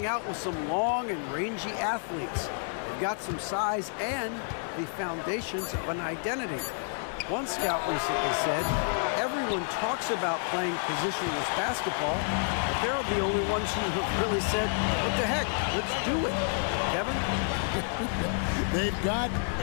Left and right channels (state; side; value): silent; right; 58 dB below the other